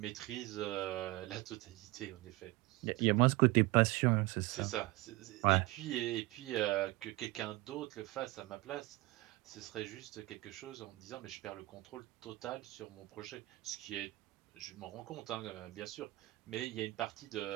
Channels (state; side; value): quieter; left; 20.5 dB